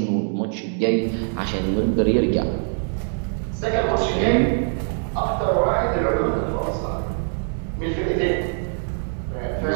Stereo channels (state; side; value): silent; left; 62 dB below the other